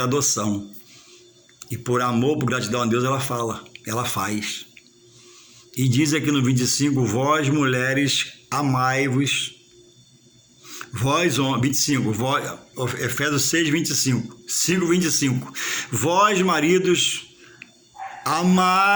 E por amor, por gratidão a Deus, ela faz. E diz aqui no 25, vós mulheres, amai-vos. Vós, 25, Efésios 6, 25, 5, 25. Vós, maridos,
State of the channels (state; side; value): identical; both; correlation 1.00